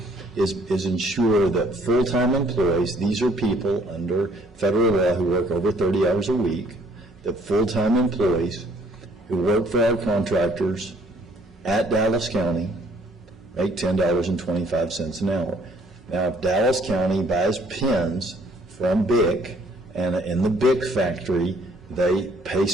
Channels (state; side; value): normal; both; correlation 0.61